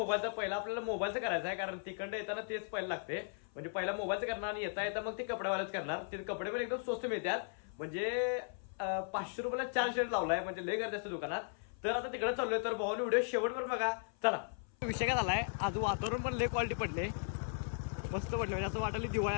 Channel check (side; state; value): right; silent; 53 dB below the other